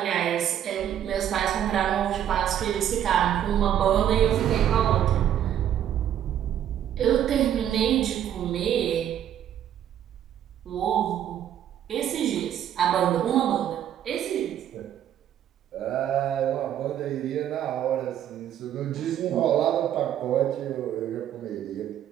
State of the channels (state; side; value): quieter; left; 10.5 dB